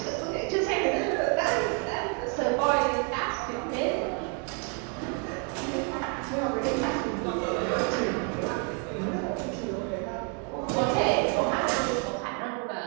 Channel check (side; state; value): left; quieter; 35.9 dB